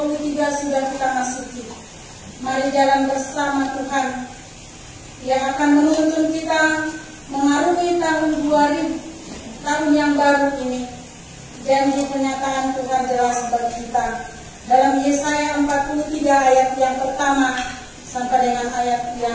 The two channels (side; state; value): both; identical; correlation 1.00